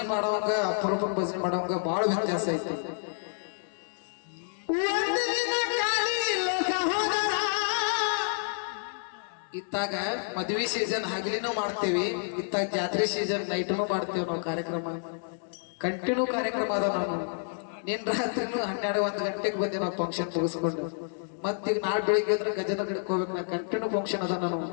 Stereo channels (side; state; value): right; silent; digital silence